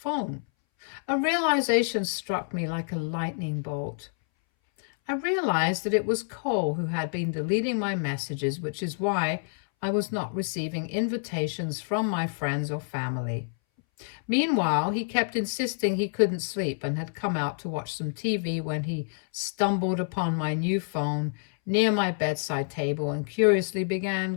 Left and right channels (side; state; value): right; silent; 59 dB below the other